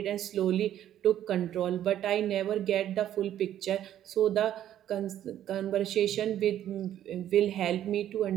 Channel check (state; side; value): quieter; left; 11.4 dB